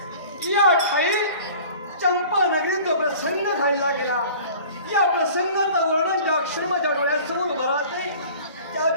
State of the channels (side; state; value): both; inverted; correlation -0.45